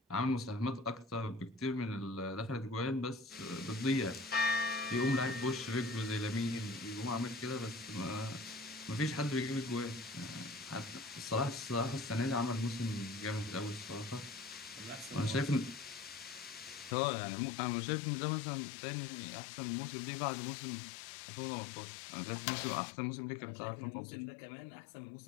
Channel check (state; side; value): drops out; right; at 16.9 s